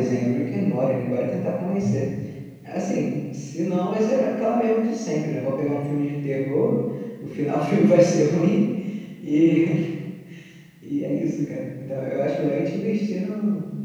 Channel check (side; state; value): both; identical; correlation 1.00